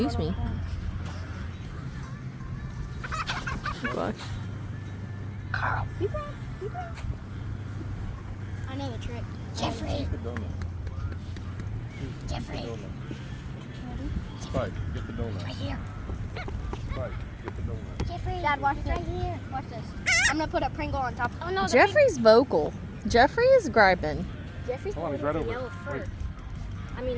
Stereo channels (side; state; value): both; identical; correlation 1.00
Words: me. Gosh. Carl, you bring. I know the trick. Jeffrey. Jeffrey. Spike, get the donut. Right here. Spike, get the donut. Jeffrey. Dad, watch this. Right here. Watch this. I'm gonna put a Pringle on top. Oh no. Jeffrey's vocal. Jeffrey is griping. Jeffrey's Hold on, he's got right over. yellow fur. Wait. I mean,